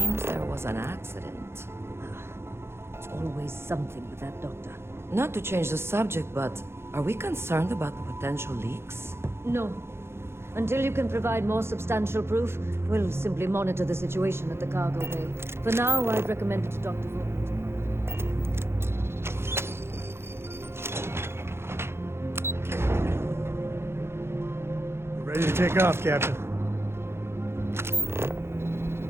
there was an accident. It's always something with that doctor. Not to change the subject, but are we concerned about the potential leaks? No. Until you can provide more substantial proof, we'll simply monitor the situation at the cargo bay. For now, I'd recommend it to Dr. Vaughan. Ready to take off, Captain.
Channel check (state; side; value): late; left; 0.12 ms